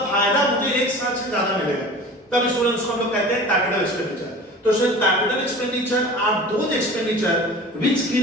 फायदा मुझे 1 साल से ज्यादा मिलेगा, तब स्टूडेंट उसको हम लोग कहते हैं कैपिटल एक्सपेंडिचर। तो student capital expenditure are those expenditure which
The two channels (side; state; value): both; normal; correlation 0.39